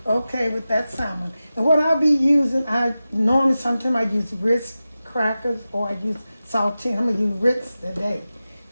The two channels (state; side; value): inverted; both; correlation -0.94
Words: Okay, with that salmon. And what I'll be using, sometimes I use Ritz crackers or I use saltine. I'm going to use Ritz today.